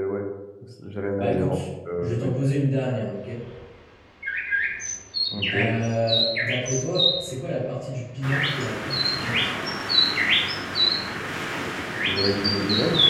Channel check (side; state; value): both; identical; correlation 1.00